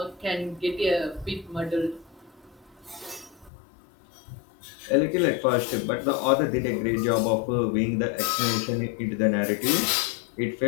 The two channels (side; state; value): right; drops out; at 3.5 s